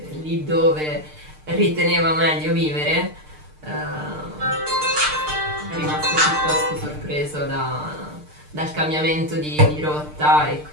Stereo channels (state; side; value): late; left; 6.6 ms